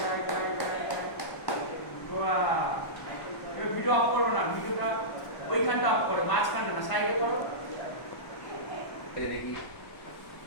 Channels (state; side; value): late; right; 1.1 ms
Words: Wow. Video of করো না ভিডিওটা ওইখানটা অফ করো মাঝখানটা না সাইডে করো দেখি